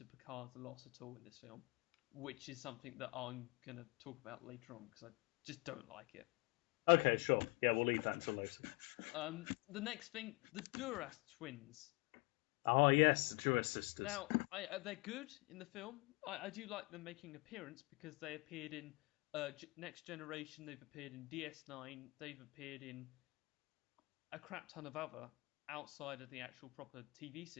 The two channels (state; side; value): quieter; right; 27.8 dB